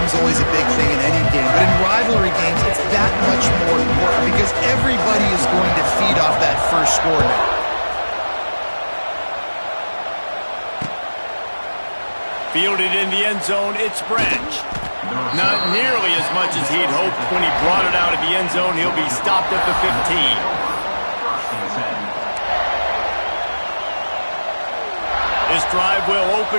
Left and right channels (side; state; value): both; inverted; correlation -1.00